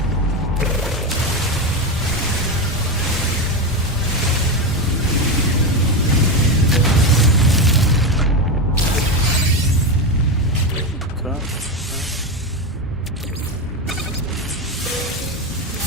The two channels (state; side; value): normal; both; correlation 0.14